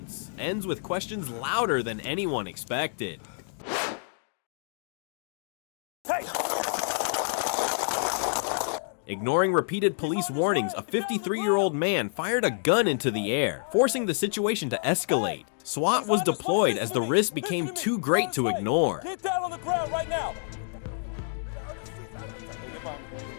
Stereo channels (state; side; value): silent; right; digital silence